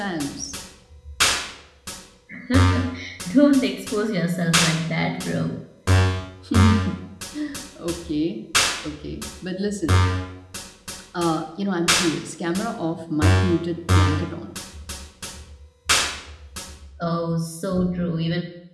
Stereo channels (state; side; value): identical; both; correlation 1.00